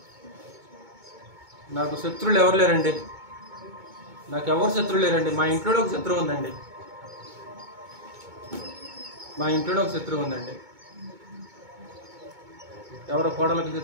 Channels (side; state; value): left; late; 2.2 ms